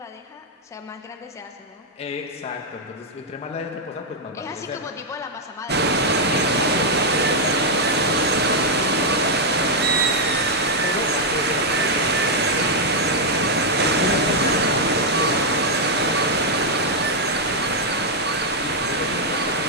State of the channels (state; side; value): normal; both; correlation -0.01